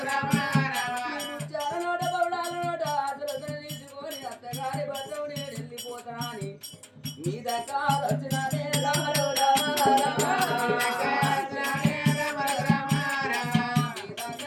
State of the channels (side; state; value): both; identical; correlation 1.00